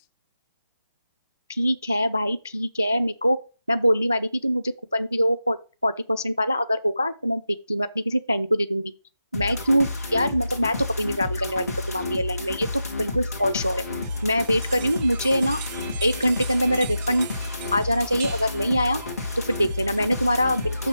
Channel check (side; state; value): both; inverted; correlation -0.90